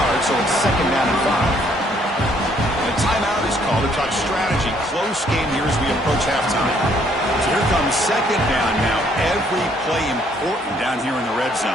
so it's 2nd down and 5. And a timeout is called to talk strategy. Close game here as we approach halftime. So here comes 2nd down now. Every play important down here in the red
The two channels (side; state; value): both; normal; correlation 0.66